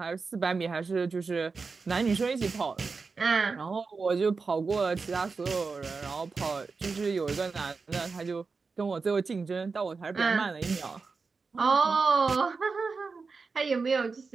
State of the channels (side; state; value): left; quieter; 4.6 dB